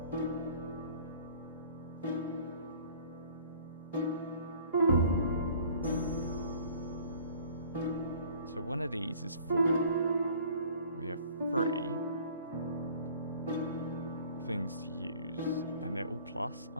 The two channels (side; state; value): both; inverted; correlation -0.51